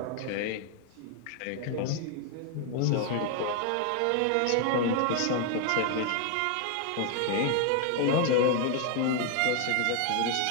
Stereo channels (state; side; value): different; both; correlation 0.01